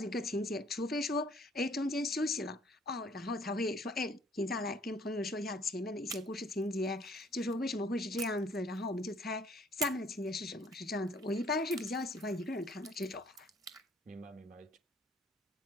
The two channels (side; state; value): both; normal; correlation 0.60